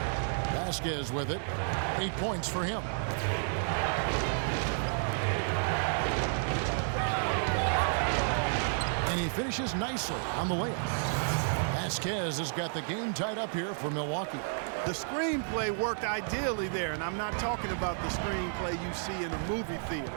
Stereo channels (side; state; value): left; silent; digital silence